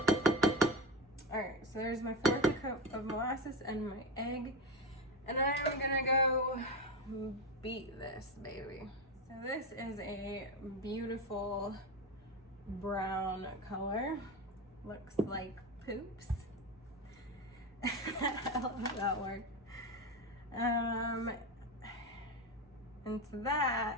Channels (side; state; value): both; normal; correlation 0.18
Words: right, so there's my 1/4 cup of molasses and my egg. And I'm gonna go beat this baby. So this is a beautiful brown color. Looks like poops. I love that word. And to